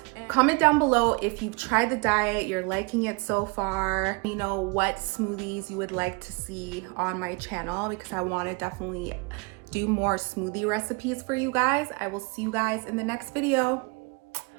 Comment down below if you've tried the diet, you're liking it so far. You know what smoothies you would like to see on my channel because I want to definitely do more smoothie recipes for you guys. I will see you guys in the next video.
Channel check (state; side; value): quieter; left; 29.7 dB